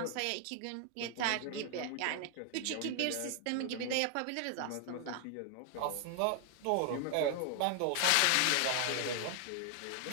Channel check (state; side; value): different; both; correlation 0.00